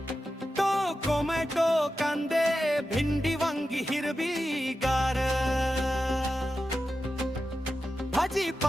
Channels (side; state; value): both; normal; correlation 0.91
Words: टोमॅटो कांदे भिंडी वांगी हिरवी गार.